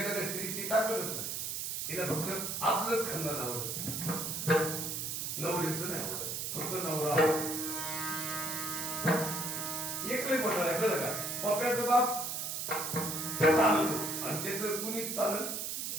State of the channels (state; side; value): noise; right; hiss, 3 dB below the sound